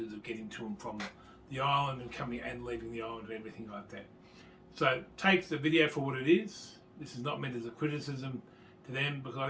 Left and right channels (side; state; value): both; identical; correlation 1.00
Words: of getting to and from the island and coming and leaving the island and everything like that. So take the video for what it is. This is not meant as a criticism to them because I